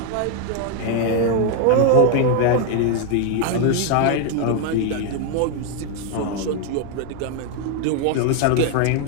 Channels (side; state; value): both; different; correlation 0.01